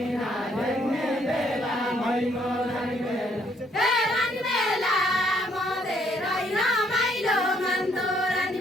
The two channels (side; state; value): both; normal; correlation 0.68